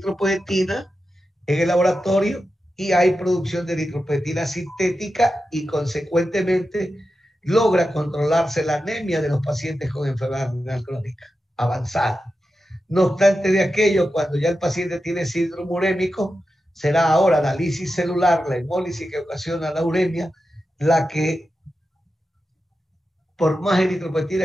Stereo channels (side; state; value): both; normal; correlation 0.90